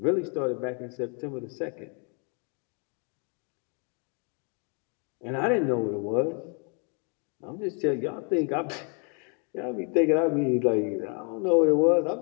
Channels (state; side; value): quieter; right; 38.8 dB